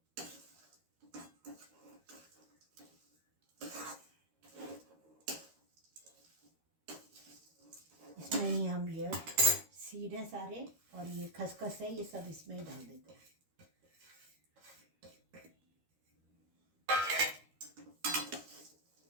इसमें ही हम ये सीड है सारे और ये खसखस है, ये सब इसमें ही डाल देते हैं।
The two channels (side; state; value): left; late; 13 ms